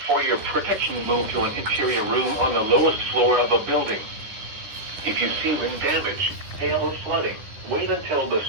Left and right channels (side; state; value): left; late; 9.9 ms